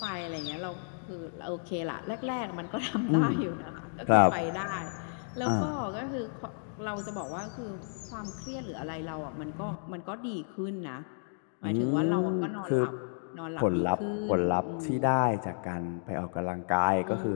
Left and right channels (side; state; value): right; silent; digital silence